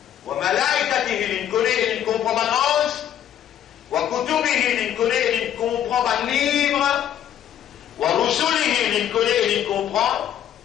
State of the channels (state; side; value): quieter; right; 10.6 dB